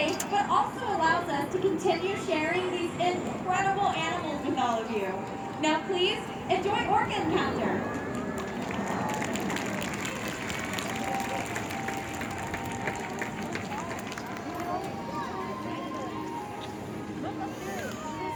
but also allows us to continue sharing these incredible animals with all of you. Now please, enjoy Orca Encounter!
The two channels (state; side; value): identical; both; correlation 1.00